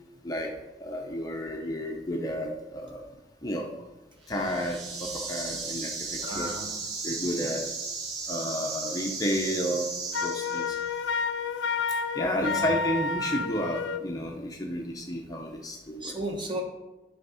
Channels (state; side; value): normal; both; correlation 0.35